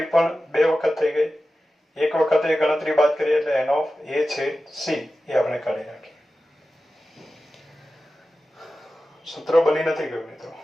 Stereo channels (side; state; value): both; normal; correlation 0.94